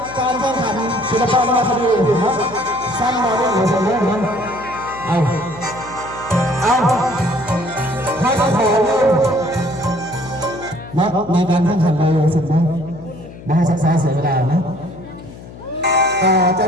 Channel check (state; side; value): noise; left; hum, 16 dB below the sound